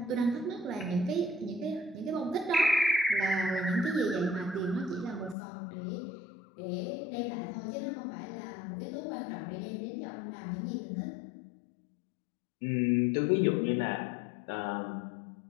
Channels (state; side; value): drops out; right; at 5.4 s